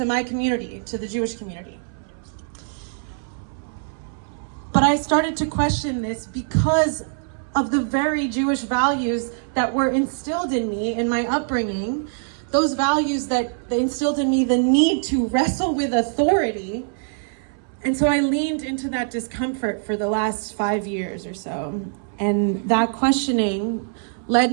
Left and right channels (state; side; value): silent; left; 63 dB below the other